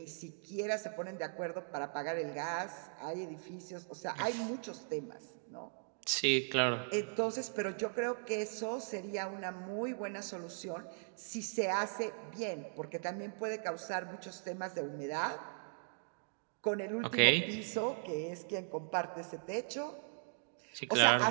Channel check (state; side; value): silent; left; digital silence